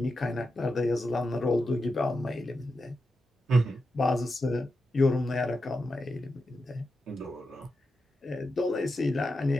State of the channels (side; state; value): both; normal; correlation 0.88